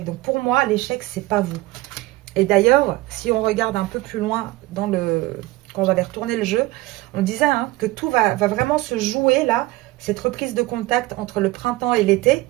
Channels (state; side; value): quieter; left; 19.4 dB